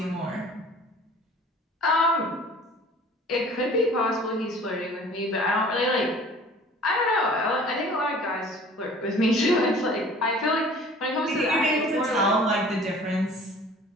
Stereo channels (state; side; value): normal; both; correlation 0.48